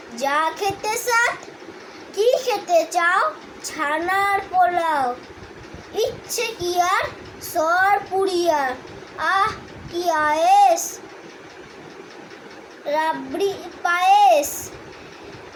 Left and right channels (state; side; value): identical; both; correlation 1.00